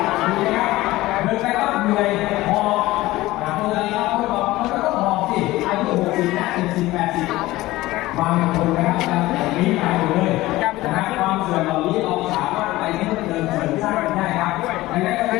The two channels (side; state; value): right; quieter; 17.9 dB